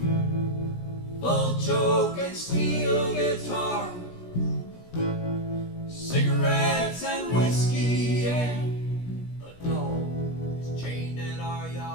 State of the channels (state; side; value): late; right; 17 ms